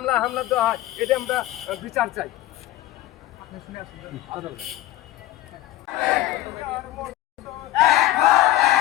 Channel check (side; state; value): right; quieter; 15.3 dB